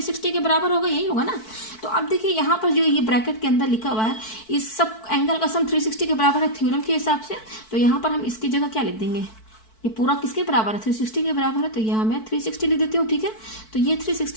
के बराबर होगा, यही होगा ना। तो अब देखिए यहाँ पर जो ये ब्रैकेट के अंदर लिखा हुआ है, इस सब एंगल का सम 360 के बराबर है थ्योरम के हिसाब से। तो यहाँ पर हम इसकी जगह क्या लिख देंगे, ये पूरा किसके बराबर है, 360 के बराबर है, तो यहाँ मैं 360 लिख देती हूँ। ठीक है, तो ये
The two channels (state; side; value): late; right; 4.6 ms